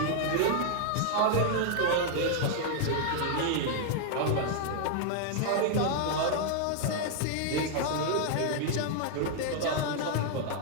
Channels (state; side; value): different; both; correlation 0.00